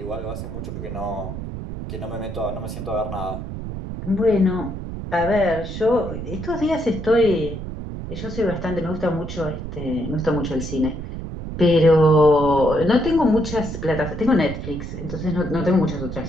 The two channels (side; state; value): right; noise; rumble, 7 dB below the sound